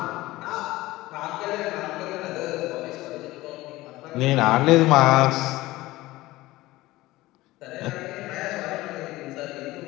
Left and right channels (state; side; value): quieter; right; 18.3 dB